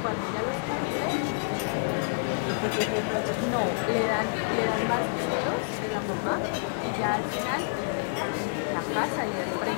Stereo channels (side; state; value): right; silent; digital silence